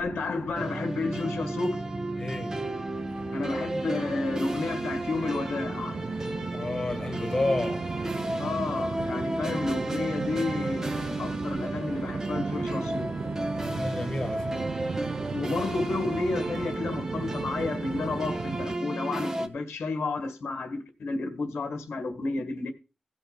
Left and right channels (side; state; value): both; normal; correlation 0.89